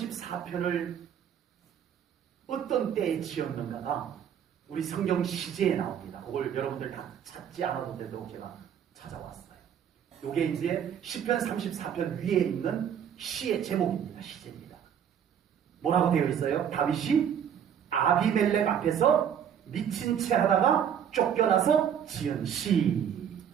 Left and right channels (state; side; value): quieter; left; 8.7 dB